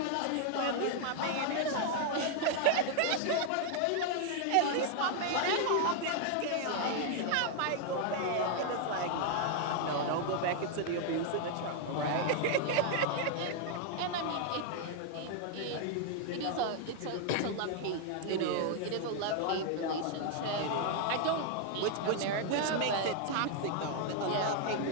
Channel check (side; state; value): both; different; correlation 0.00